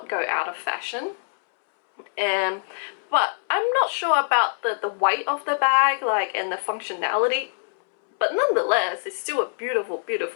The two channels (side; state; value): right; silent; 63 dB below the other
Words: go out of fashion. But I'm not sure about the weight of the bag, and the functionality. But nonetheless, it's still a beautiful,